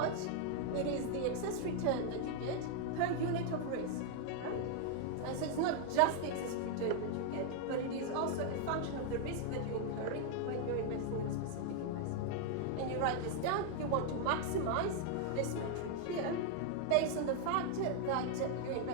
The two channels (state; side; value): different; both; correlation 0.00